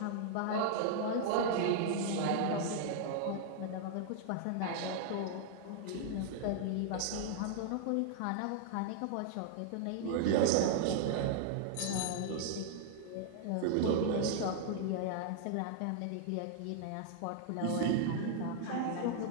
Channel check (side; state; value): both; different; correlation -0.01